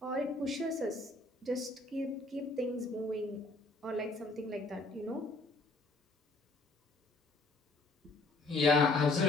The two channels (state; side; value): quieter; right; 3.1 dB